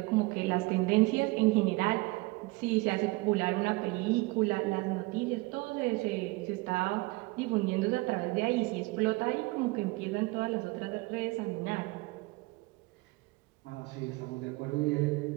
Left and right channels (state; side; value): quieter; left; 23.3 dB